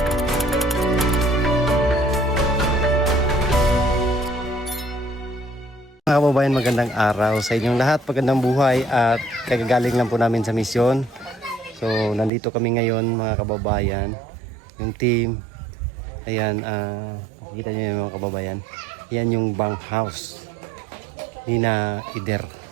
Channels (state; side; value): drops out; left; at 12.3 s